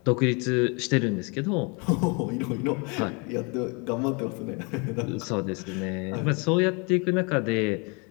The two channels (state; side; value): quieter; right; 31.8 dB